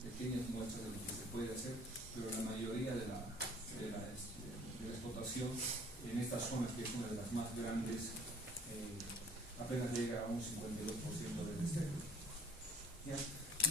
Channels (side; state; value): both; normal; correlation 0.53